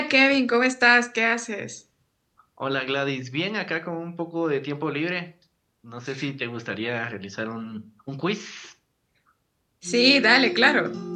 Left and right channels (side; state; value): both; identical; correlation 1.00